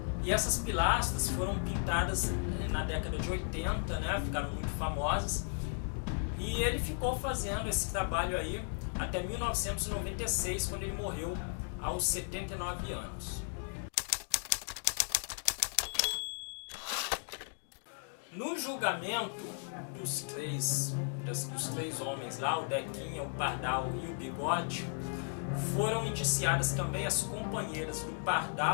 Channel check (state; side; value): silent; right; 54 dB below the other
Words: E essas pilastras foram pintadas na década de 80, né? Ficaram muito famosas, e ele ficou fazendo esse trabalho aí até 1996, quando ele morreu aos 79 anos. No julgamento dos três homens lá, o Dequinha, o Pardal e o Bigode, foram indiciadas também as companheiras do